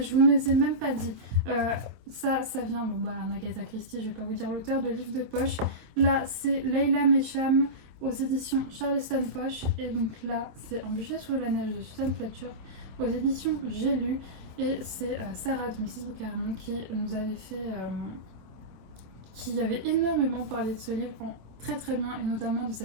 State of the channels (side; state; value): left; late; 26 ms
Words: Je vous ne les ai même pas dit. Ça vient, Agatha Christie, je vais pas vous dire l'auteur, de livres de poche. Là, c'est Leila Mesham aux éditions Charleston Poche. Et donc là, c'est Un bûcher sous la neige de Susan Fletcher aux éditions J'ai lu. Et c'est Sarah de Mrs. Bookerman qui nous avait fait... qui avait énormément parlé de ce livre très bien, et notamment de